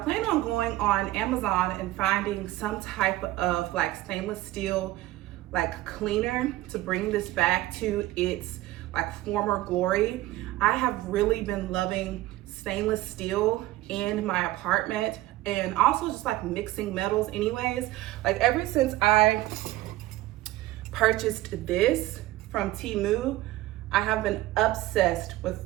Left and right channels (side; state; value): left; quieter; 16.8 dB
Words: on going on Amazon and finding some type of like stainless steel like cleaner to bring this back to its like former glory. I have really been loving stainless steel in my apartment, and also just like mixing metals anyways. Like ever since I purchased this from Temu, I have been obsessed with